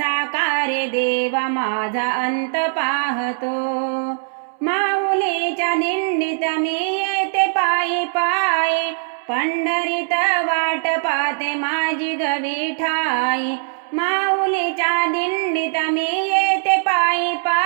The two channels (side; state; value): left; silent; 65 dB below the other